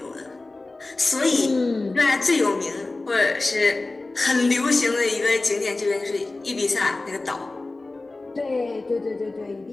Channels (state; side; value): quieter; right; 3.2 dB